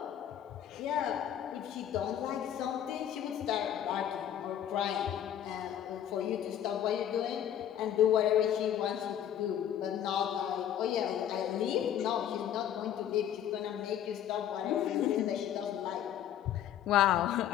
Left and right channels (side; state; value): right; quieter; 10.4 dB